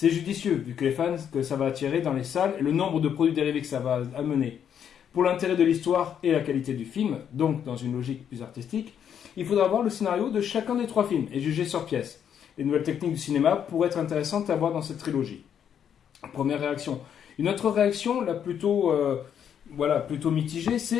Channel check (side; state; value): right; quieter; 8.7 dB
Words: judicieux, vu que les fans que ça va attirer dans les salles et le nombre de produits dérivés que ça va amener. Pour l'intérêt de l'histoire et la qualité du film, donc dans une logique plus artistique, il faudra voir le scénario de chacun des trois films et juger sur pièce. Les nouvelles techniques du cinéma pourraient être intéressantes à voir dans cette trilogie. Première réaction. Une autre réaction, là plutôt mitigée,